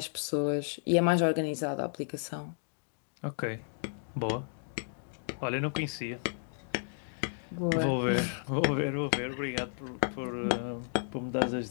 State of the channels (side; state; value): right; silent; digital silence